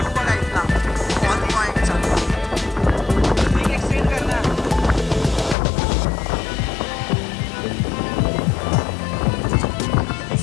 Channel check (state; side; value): drops out; right; at 5.6 s